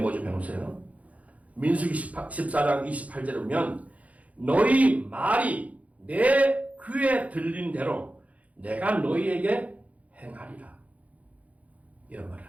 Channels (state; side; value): late; left; 0.068 ms